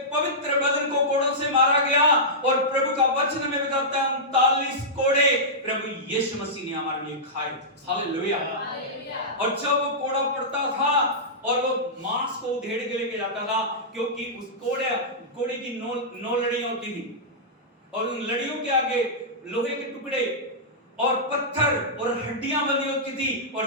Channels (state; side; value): normal; both; correlation -0.13